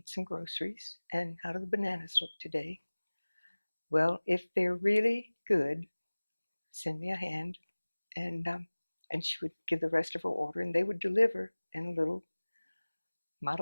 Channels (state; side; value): inverted; both; correlation -1.00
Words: some groceries. And how do the bananas look today? Well, if they're really good, send me a hand." And she would give the rest of her order, and they would deliver in a little